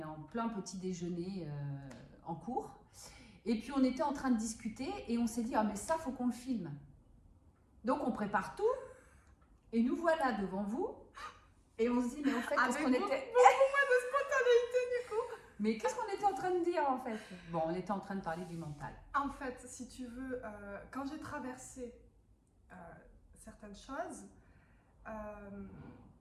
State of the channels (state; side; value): identical; both; correlation 1.00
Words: en plein petit déjeuner en cours. Et puis on était en train de discuter et on s'est dit ah mais ça faut qu'on le filme. Donc on prépare tout et nous voilà devant vous et on se dit mais en fait qu'est-ce qu'on était beaucoup moins de spontanéité du coup. Mais qu'est-ce qu'on était en train de dire en fait? Bon, on était en train de parler du mental. En fait, si tu veux, quand j'ai traversé certaines choses,